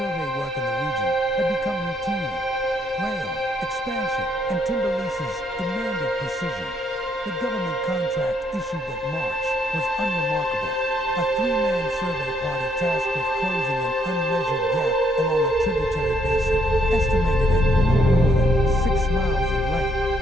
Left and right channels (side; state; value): both; normal; correlation 0.72